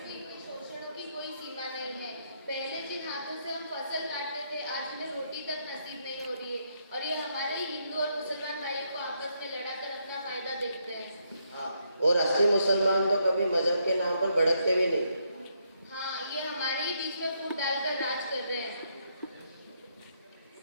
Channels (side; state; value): both; inverted; correlation -0.76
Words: पहले जिन हाथों से हम फसल काटते थे, आज हमें रोटी तक नसीब नहीं हो रही है, और ये हमारे ही हिंदू और मुसलमान भाइयों को आपस में लड़ाकर अपना फायदा देखते हैं। हाँ, और असली मुसलमान तो कभी मजहब के नाम पर भड़कते भी नहीं। हाँ, ये हमारे ही बीच में फूट डालकर राज कर रहे हैं।